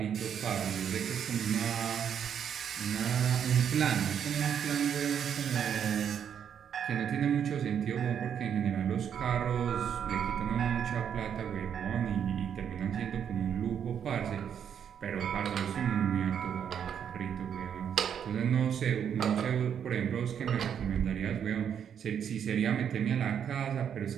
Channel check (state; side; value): quieter; left; 8.4 dB